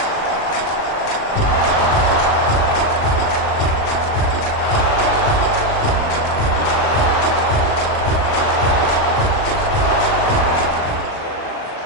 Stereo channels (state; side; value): late; right; 38 ms